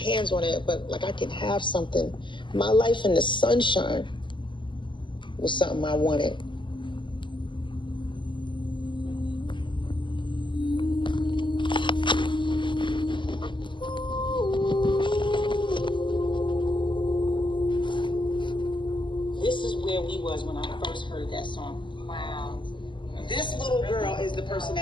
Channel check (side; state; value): right; late; 0.24 ms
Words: on it, but like I could have something. My life in the sunshine was something I wanted. This is where we was when I first heard that song. Wow. This little girl is the person